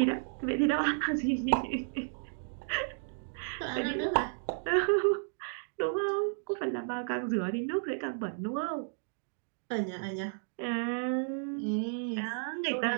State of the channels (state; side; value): silent; left; digital silence